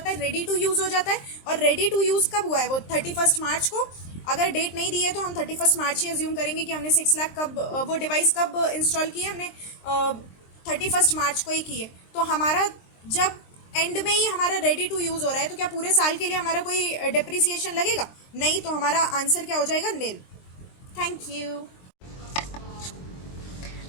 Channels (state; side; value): late; right; 23 ms